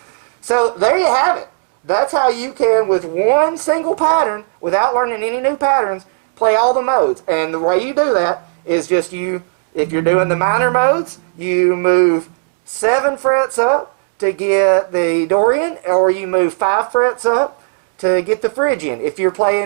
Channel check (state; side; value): silent; left; digital silence